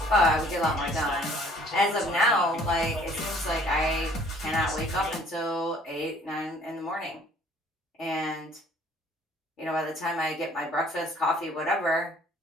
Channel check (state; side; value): normal; both; correlation 0.57